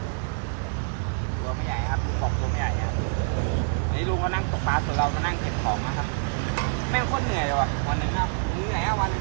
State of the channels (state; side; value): silent; left; 61 dB below the other